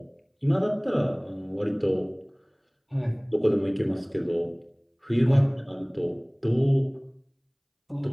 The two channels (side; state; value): both; identical; correlation 1.00